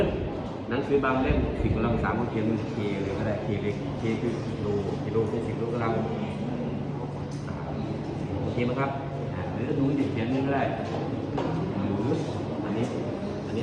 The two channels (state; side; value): identical; both; correlation 1.00